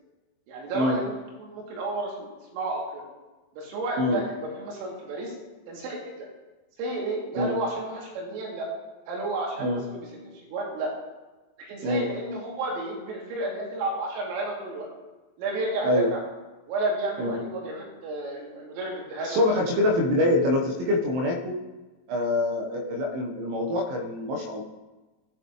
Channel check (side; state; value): left; late; 23 ms